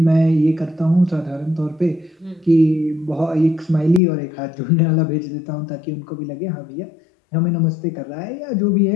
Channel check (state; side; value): drops out; right; at 4.0 s